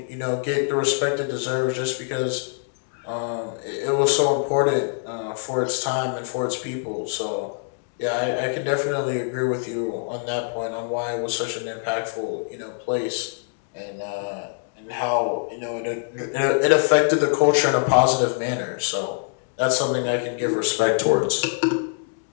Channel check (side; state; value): right; silent; digital silence